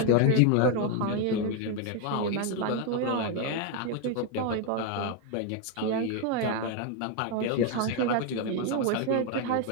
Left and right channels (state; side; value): different; both; correlation 0.01